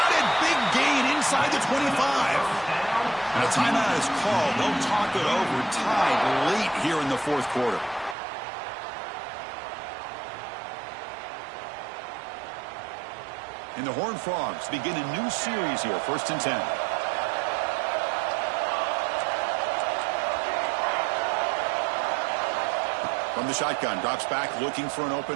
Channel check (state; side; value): drops out; left; at 8.2 s